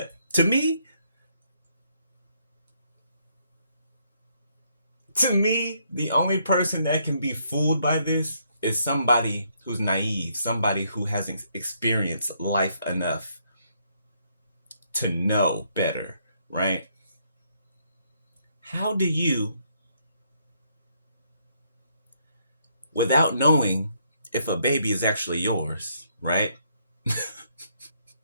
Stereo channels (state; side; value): inverted; both; correlation -0.72